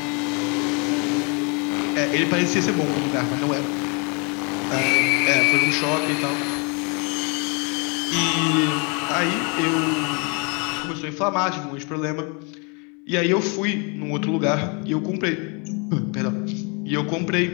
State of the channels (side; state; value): right; quieter; 33.3 dB